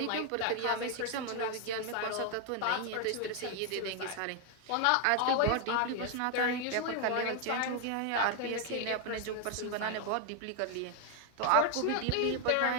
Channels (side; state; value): both; different; correlation 0.01